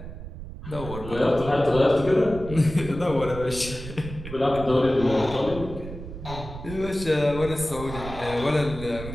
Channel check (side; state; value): right; noise; rumble, 11 dB below the sound